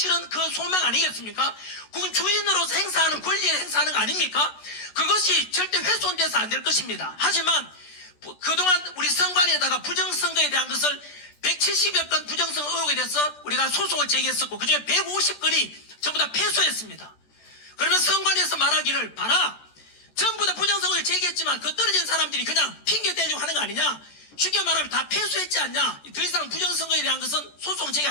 그 소망 아니겠습니까? 그건 주인으로서 행사하는 권리에 행사하는 거 아닙니까? 그것이 절대 훼손돼서 안 될 것입니다. 하지만 그동안 우리 선관위에다가 부정선거에 대한 것을 170여 건 부정선거 의혹에 대해서 우리가 소송을 제기했었고 그중에 150건이 전부 다 패소했습니다. 그러면 선관위에서 말하기를 봐라, 전부 다 부정선거를 제기했지만 그 떨어진 사람들이 그냥 핑계 대려고 하는 거 아니냐, 쉽게 말하면 다 패소했지 않냐, 더 이상 부정선거에 대한 것은 소송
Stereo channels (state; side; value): late; right; 14 ms